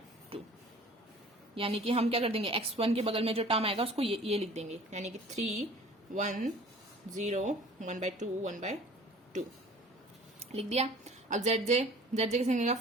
यानी कि हम क्या कर देंगे? X1 के बगल में जो टर्म आएगा उसको ये लिख देंगे, यानी कि 3 1 0 1/2 1/2 लिख दिया। अब ZJ कैसे निकलेगा?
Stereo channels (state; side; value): normal; both; correlation 0.48